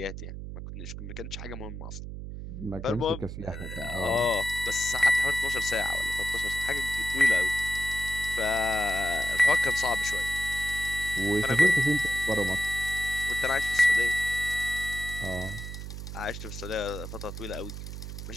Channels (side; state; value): right; noise; hum, 8 dB below the sound